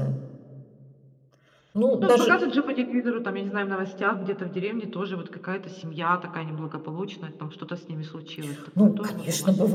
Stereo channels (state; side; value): identical; both; correlation 1.00